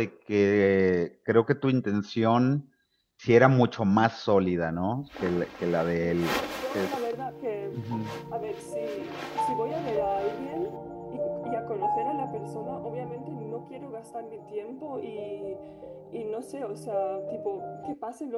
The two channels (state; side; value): identical; both; correlation 1.00